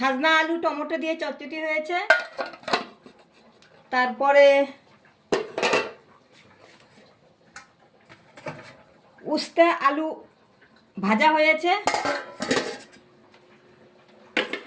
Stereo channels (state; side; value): identical; both; correlation 1.00